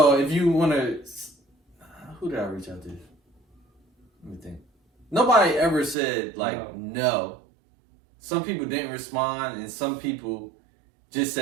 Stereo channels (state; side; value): drops out; left; at 6.0 s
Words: if you want to, who did I reach out to? Let me think. Nobody ever said like no. Some people didn't respond, and some people just